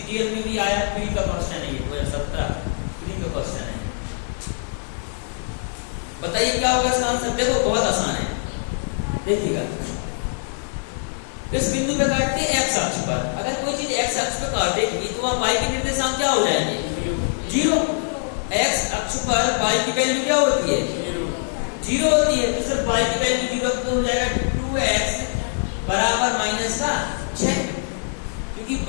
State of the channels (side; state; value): right; silent; digital silence